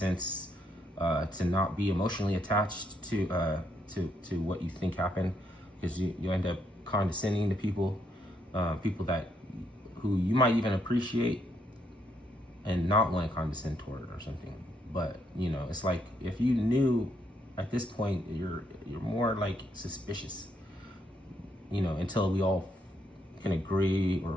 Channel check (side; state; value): both; normal; correlation 0.75